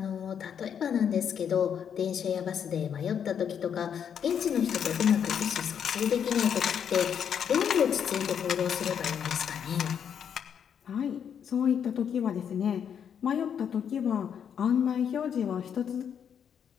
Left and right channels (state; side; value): quieter; right; 8.1 dB